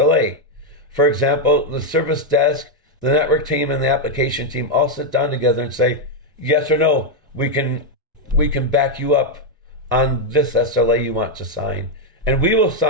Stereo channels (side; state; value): both; normal; correlation 0.02